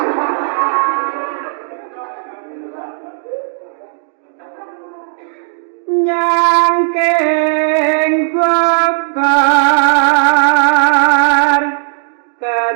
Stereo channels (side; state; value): left; silent; digital silence